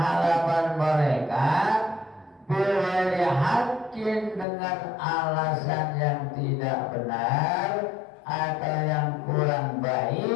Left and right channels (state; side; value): drops out; right; at 4.5 s